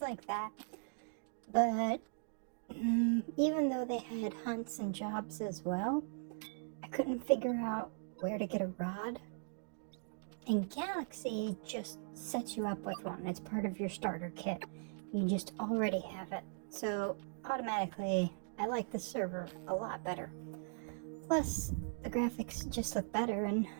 like that, but even though they had hunts and jobs as well, I couldn't figure out where to get a rod. And Galaxy just sets you up with one. It's part of your starter kit. You just already have it. So automatically, I like the server a lot better. Plus, the graphics just look better and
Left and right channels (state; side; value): silent; left; digital silence